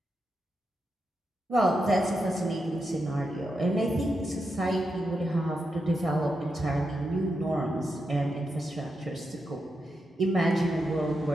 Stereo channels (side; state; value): both; normal; correlation 0.86